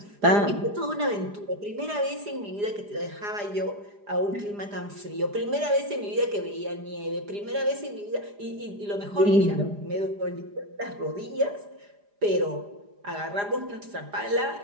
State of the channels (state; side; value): late; left; 4.9 ms